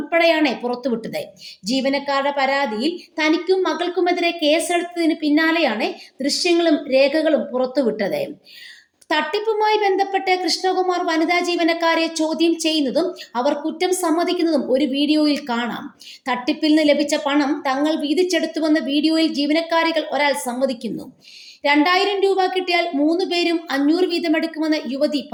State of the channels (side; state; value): both; identical; correlation 1.00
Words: പുറത്തുവിട്ടത്. ജീവനക്കാരുടെ പരാതിയിൽ തനിക്കും മകൾക്കുമെതിരെ കേസെടുത്തതിന് പിന്നാലെയാണ് ദൃശ്യങ്ങളും രേഖകളും പുറത്തുവിട്ടത്. തട്ടിപ്പുമായി ബന്ധപ്പെട്ട് കൃഷ്ണകുമാർ വനിതാ ജീവനക്കാരെ ചോദ്യം ചെയ്യുന്നതും അവർ കുറ്റം സമ്മതിക്കുന്നതും ഒരു വീഡിയോയിൽ കാണാം. തട്ടിപ്പിൽ നിന്ന് ലഭിച്ച പണം തങ്ങൾ വീതിച്ചെടുത്തുവെന്ന് വീഡിയോയിൽ ജീവനക്കാരികൾ ഒരാൾ സമ്മതിക്കുന്നു. 2000 രൂപ കിട്ടിയാൽ 3 പേരും 500 വീതമെടുക്കുമെന്ന് യുവതി